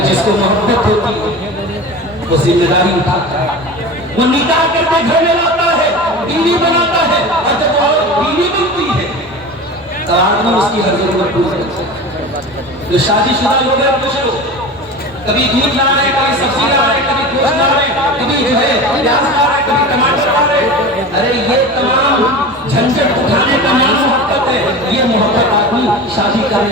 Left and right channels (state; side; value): normal; both; correlation 0.32